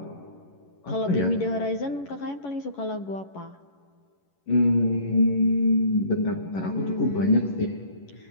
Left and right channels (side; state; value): right; late; 11 ms